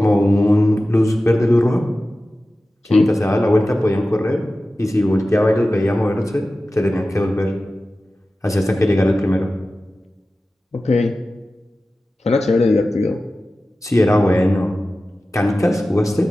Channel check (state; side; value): normal; both; correlation 0.95